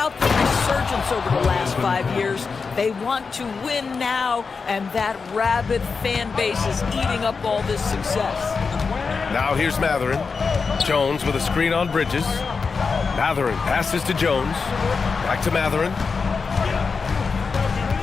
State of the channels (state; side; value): quieter; right; 5.0 dB